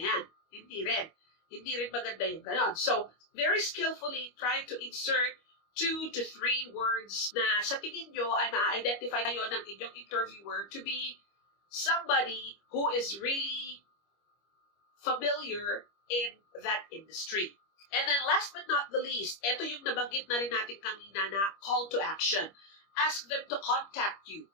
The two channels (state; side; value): late; right; 25 ms